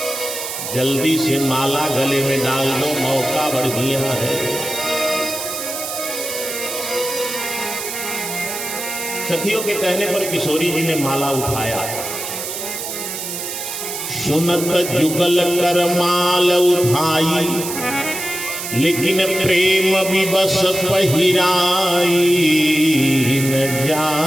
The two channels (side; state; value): right; noise; hiss, 6 dB below the sound